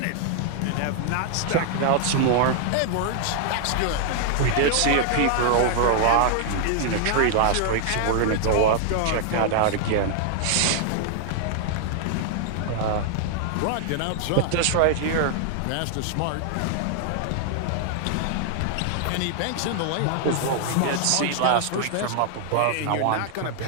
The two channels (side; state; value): both; different; correlation 0.00